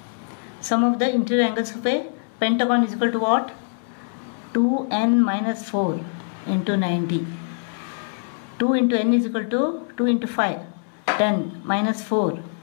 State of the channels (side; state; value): right; silent; 63 dB below the other